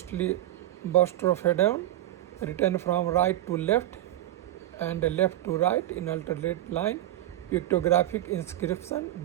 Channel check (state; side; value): quieter; left; 14.2 dB